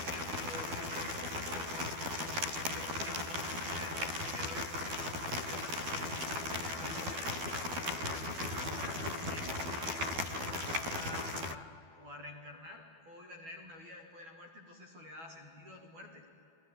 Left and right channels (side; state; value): left; late; 12 ms